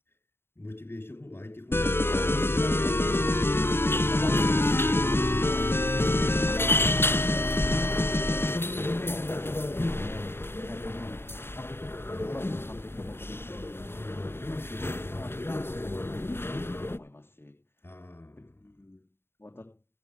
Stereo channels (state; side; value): late; right; 0.11 ms